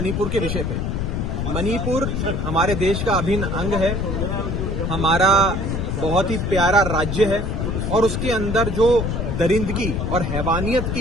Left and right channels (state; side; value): noise; left; rumble, 1 dB below the sound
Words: के विषय पे। मणिपुर हमारे देश का अभिन्न अंग है, हमारा बहुत ही प्यारा राज्य है और उसके अंदर जो दरिंदगी और हैवानियत